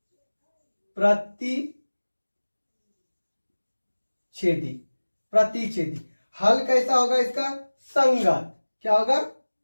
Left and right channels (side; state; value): both; inverted; correlation -1.00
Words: प्रतिच्छेदी, प्रतिच्छेदी। हल कैसा होगा इसका? संगत। क्या होगा?